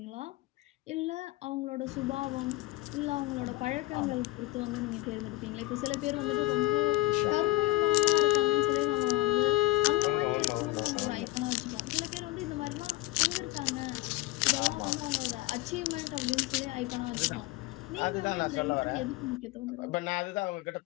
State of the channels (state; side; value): quieter; right; 18.9 dB